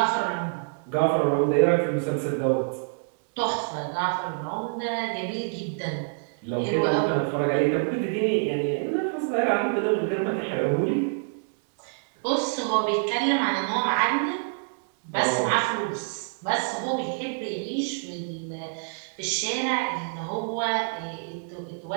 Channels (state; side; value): silent; left; digital silence